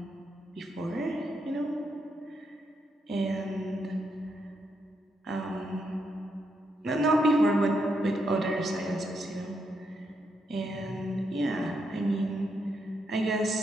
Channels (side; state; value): both; normal; correlation 0.80